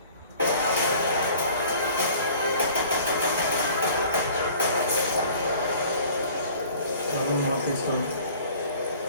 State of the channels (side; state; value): both; inverted; correlation -0.48